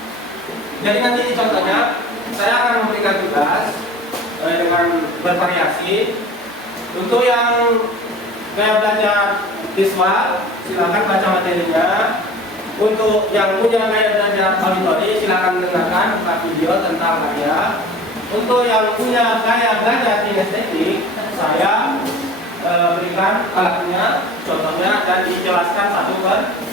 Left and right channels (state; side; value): normal; both; correlation 0.41